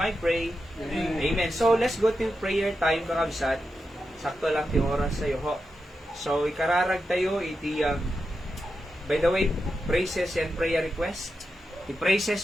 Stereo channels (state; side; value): normal; both; correlation 0.88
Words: pray. Amen. So, let's go to prayer time, kakabsat. Sakto lang ti oras sa'yo, ho. So, ikararag tayo, iti, by the way, praises and prayer request.